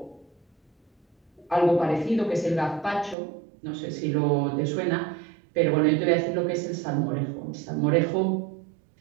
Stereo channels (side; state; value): left; drops out; at 3.2 s